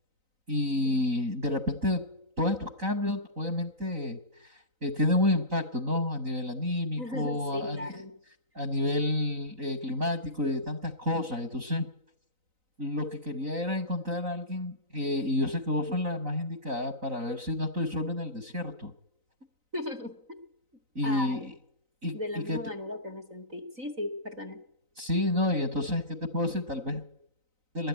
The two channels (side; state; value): left; late; 3.9 ms